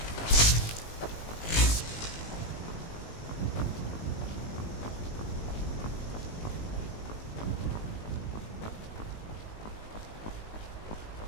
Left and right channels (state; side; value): late; right; 19 ms